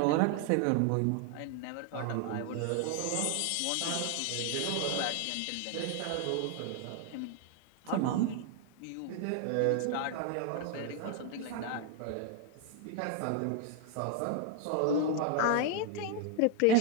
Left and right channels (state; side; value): different; both; correlation 0.01